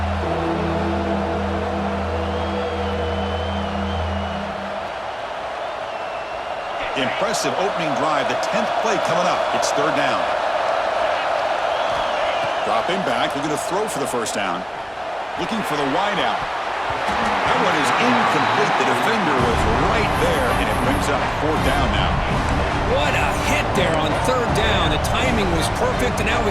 Impressive opening drive, the 10th play coming up. It's third down. Dropping back, looking to throw for the first down. Looking for the wide out. That one is incomplete. The defender was right there, and it brings up fourth down now. What a hit there on third down. The timing was perfect, and now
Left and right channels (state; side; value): identical; both; correlation 1.00